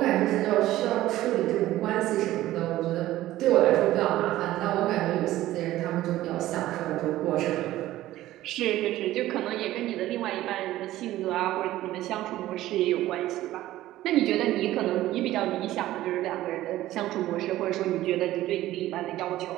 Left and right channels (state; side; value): quieter; left; 15.1 dB